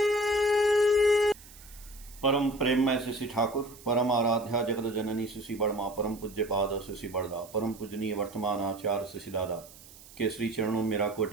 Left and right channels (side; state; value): right; noise; hiss, 21 dB below the sound